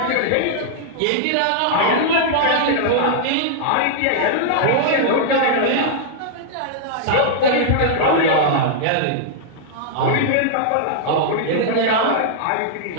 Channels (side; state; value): both; different; correlation -0.01